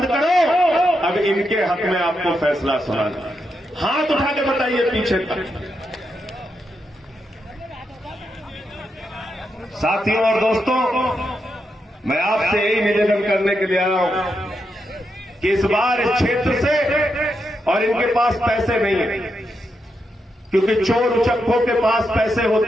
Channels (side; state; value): both; normal; correlation 0.84